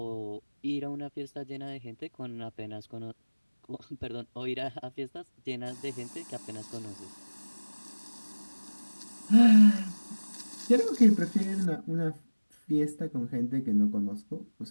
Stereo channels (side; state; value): both; inverted; correlation -1.00